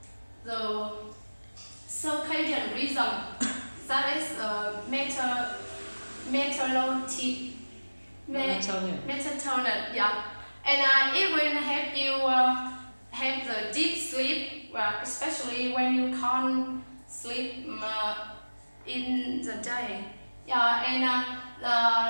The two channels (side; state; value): both; inverted; correlation -1.00